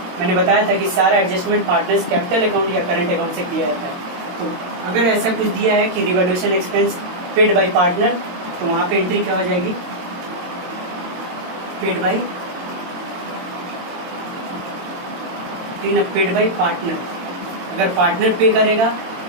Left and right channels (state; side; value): late; left; 22 ms